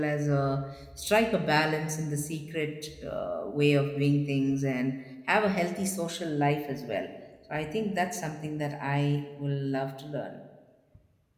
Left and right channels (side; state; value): both; identical; correlation 1.00